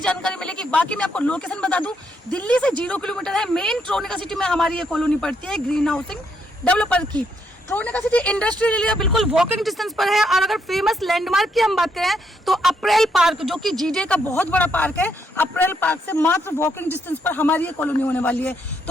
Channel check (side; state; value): both; normal; correlation 0.76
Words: मिलेगी। बाकी मैं आपको लोकेशन बता दूं, दिल्ली से 0 किलोमीटर है, मेन ट्रोनिका सिटी में हमारी ये कॉलोनी पड़ती है ग्रीन हाउसिंग डेवलपर की। ट्रोनिका सिटी इंडस्ट्रियल एरिया बिल्कुल वॉकिंग डिस्टेंस पर है। और अगर फेमस लैंडमार्क की हम बात करें तो अप्रैल पार्क, जो कि GDA का बहुत बड़ा पार्क है, अप्रैल पार्क से मात्र वॉकिंग डिस्टेंस पर हमारी ये कॉलोनी होने वाली है।